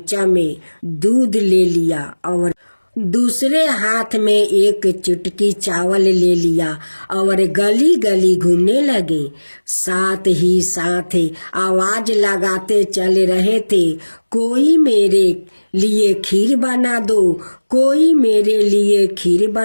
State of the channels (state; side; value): inverted; both; correlation -1.00